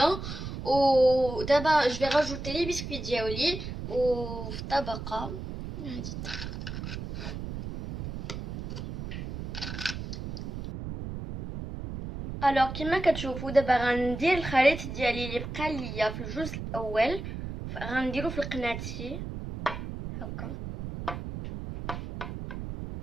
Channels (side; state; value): right; noise; rumble, 7 dB below the sound